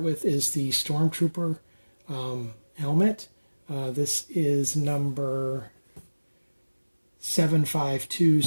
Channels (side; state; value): both; inverted; correlation -1.00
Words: with is the Stormtrooper helmet. This is number